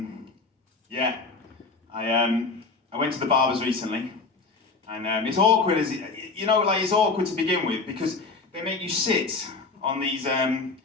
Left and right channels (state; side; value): quieter; right; 4.1 dB